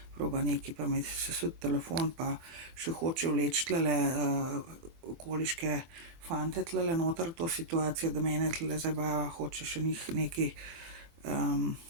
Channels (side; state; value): left; late; 25 ms